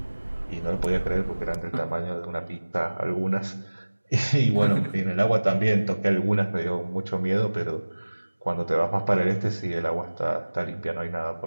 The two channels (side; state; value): both; inverted; correlation -1.00